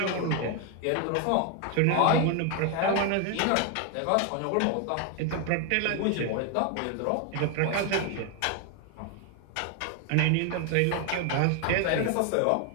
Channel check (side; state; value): both; different; correlation 0.01